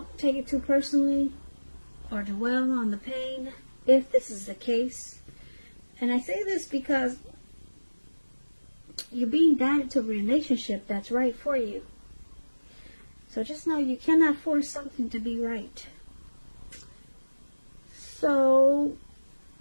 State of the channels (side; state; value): both; inverted; correlation -1.00